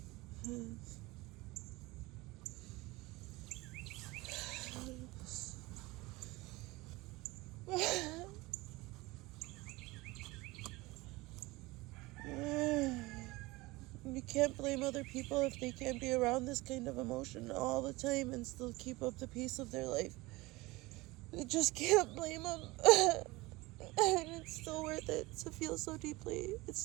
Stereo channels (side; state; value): left; quieter; 21.6 dB